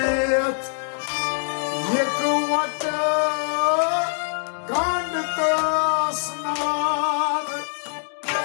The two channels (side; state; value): right; silent; digital silence